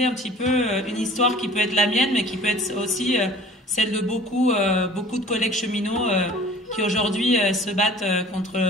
un petit peu une histoire qui peut être la mienne, mais qui peut être aussi celle de beaucoup de collègues cheminots qui aujourd'hui se battent contre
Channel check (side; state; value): both; normal; correlation 0.47